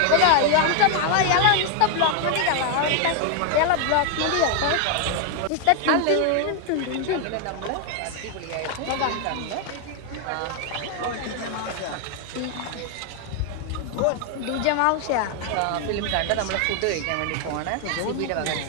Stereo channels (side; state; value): both; different; correlation 0.00